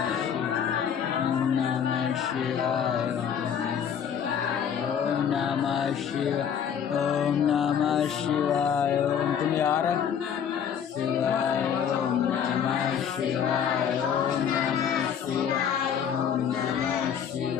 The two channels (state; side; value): quieter; right; 8.1 dB